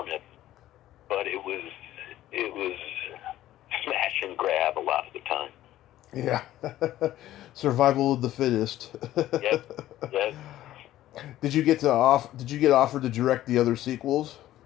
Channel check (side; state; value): right; quieter; 13.9 dB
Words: but it was smash and grab a lot of the time. Yeah. Survival of the fittest. Yes. Did you get offered to direct the other sequels?